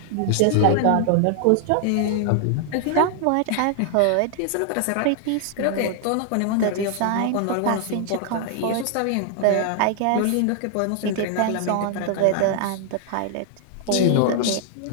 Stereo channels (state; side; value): different; both; correlation 0.00